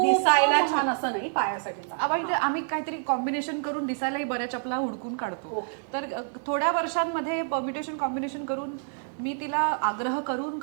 दिसायला छान असं नाही, पायासाठी चांगलं. आम्ही काहीतरी कॉम्बिनेशन करून दिसायलाही बऱ्या चपला हुडकून काढतो. तर थोड्या वर्षांमध्ये परम्युटेशन कॉम्बिनेशन करून मी तिला आग्रह करून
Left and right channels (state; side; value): silent; left; digital silence